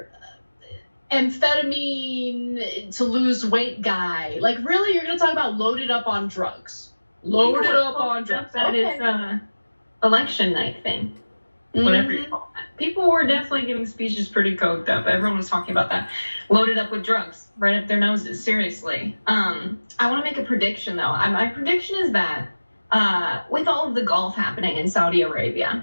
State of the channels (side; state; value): both; inverted; correlation -1.00